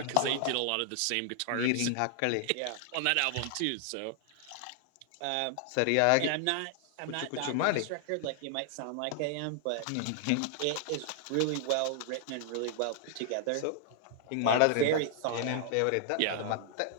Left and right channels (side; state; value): both; different; correlation 0.00